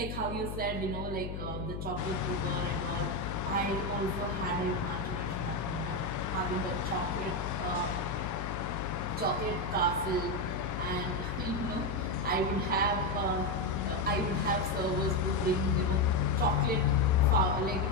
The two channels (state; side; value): noise; left; hum, 6 dB below the sound